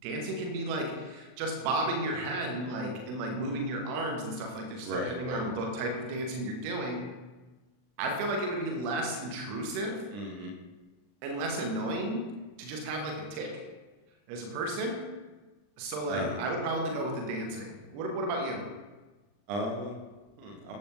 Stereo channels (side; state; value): left; late; 40 ms